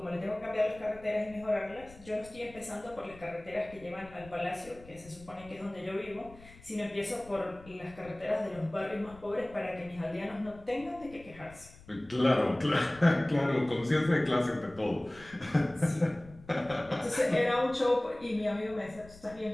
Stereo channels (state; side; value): noise; left; rumble, 21 dB below the sound